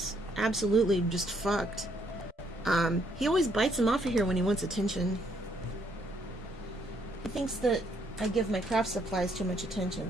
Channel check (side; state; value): both; normal; correlation 0.70